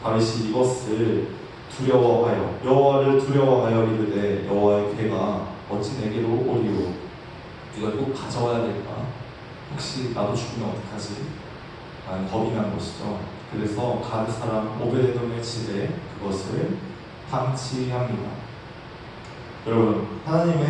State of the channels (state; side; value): identical; both; correlation 1.00